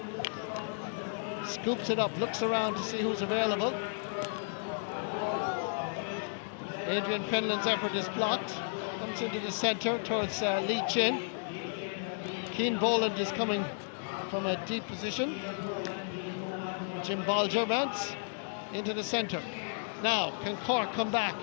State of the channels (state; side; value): silent; right; digital silence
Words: Scoops it up, looks around to see who's available. Adrian Fenlon's effort is blocked. Comes into the centre towards Lee Chin. Cian Boland is coming from a deep position. Jim Bolger mounts into the centre. Now, can Cork come back